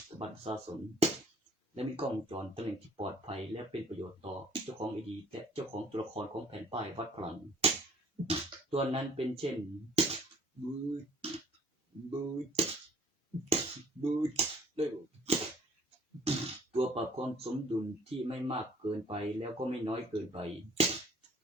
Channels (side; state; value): both; normal; correlation 0.56